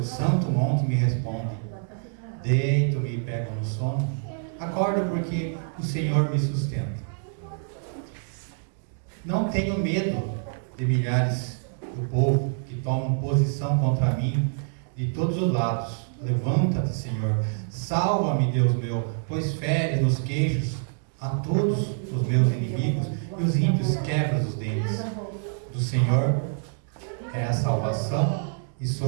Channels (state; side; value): silent; left; digital silence